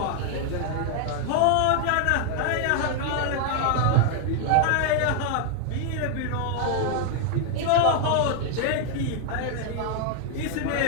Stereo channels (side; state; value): both; different; correlation 0.00